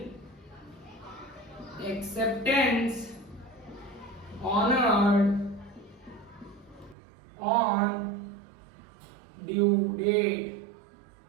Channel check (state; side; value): drops out; left; at 7.0 s